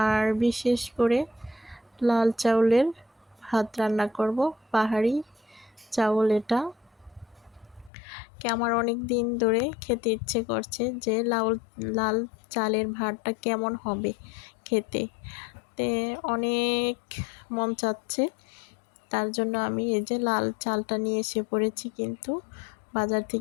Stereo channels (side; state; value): right; drops out; at 7.9 s